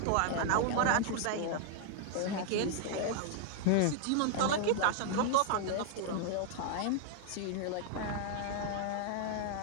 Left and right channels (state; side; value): different; both; correlation 0.00